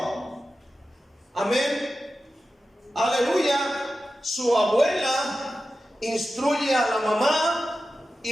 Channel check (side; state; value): both; normal; correlation 0.93